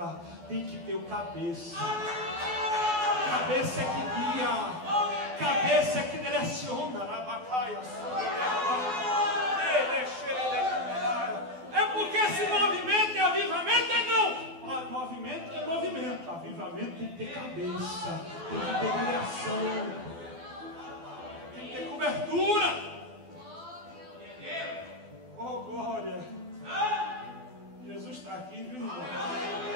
Tem que ter o cabeça. Cabeça é que guia. Cabeça é que direciona. É porque se movimento é avivamento, é não. Movimento é movimento. Avivamento tem que ter cabeça. Tem que ter direção. Cobertura. Oh, glória. Jesus está aqui, viu, irmão?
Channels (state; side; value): late; left; 12 ms